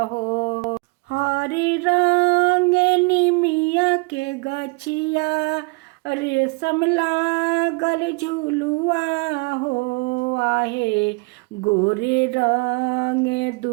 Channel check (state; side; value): quieter; left; 30.2 dB